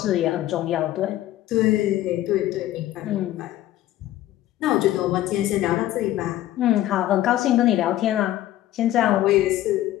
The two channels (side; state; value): right; quieter; 14.1 dB